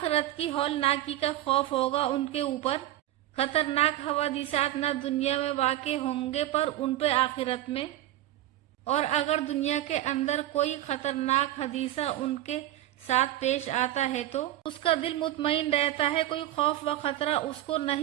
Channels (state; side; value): quieter; left; 14.1 dB